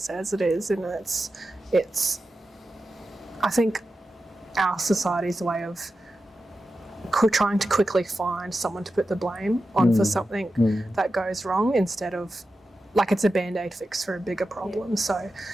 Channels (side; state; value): both; normal; correlation 0.92